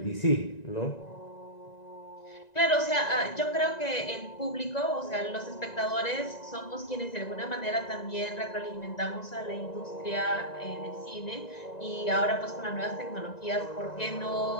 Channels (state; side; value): late; right; 1.9 ms